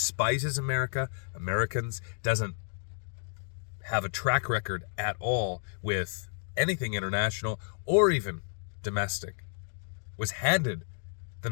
Americans, doesn't have a track record at all with anything international or even domestic, was handed the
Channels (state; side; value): silent; right; digital silence